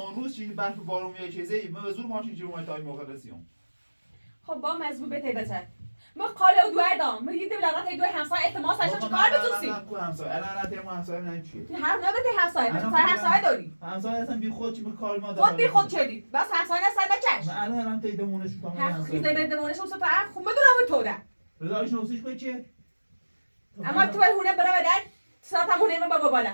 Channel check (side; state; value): both; inverted; correlation -1.00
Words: روز چی برف بارون میاد چیزی ما به زور ماشین جلو ما تا این موقع رسیدیم خب با مزبوط به تیبتر ما قاله دو دام ما یه دولت دو همسایه احتمال ساشا چیکار بتوسی الان تیم همسایه من چیه هر نبته همسایه همسایه داری همسایه اصلا بی خود چی به کار ما خود بی خود چدی بس همسایه نسل بچش من الان تیدمونش میکنم هر خیزه بدمونش اون سفر خوب بدونم تو ده رضایش نوسیش به چیه اما تو هونه برا بدن ساعت همونه من بابا بالا